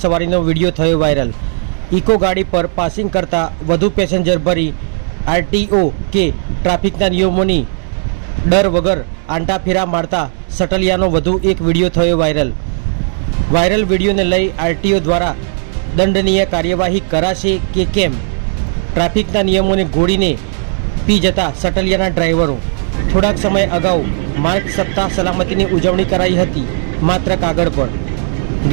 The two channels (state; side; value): silent; left; 60 dB below the other